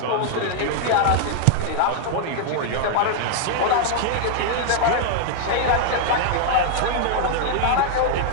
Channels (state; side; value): different; both; correlation 0.00